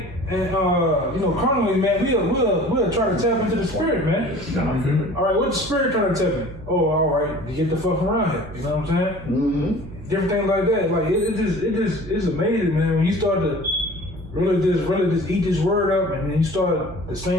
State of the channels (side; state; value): right; noise; hum, 15 dB below the sound